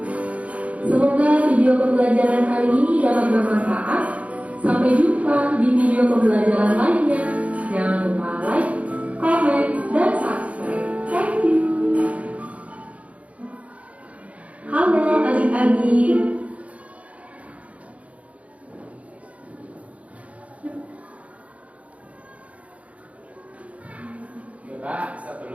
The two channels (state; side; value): late; left; 0.066 ms